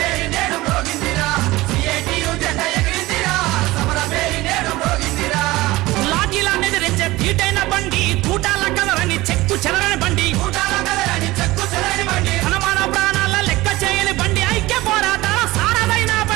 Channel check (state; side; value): quieter; left; 19.2 dB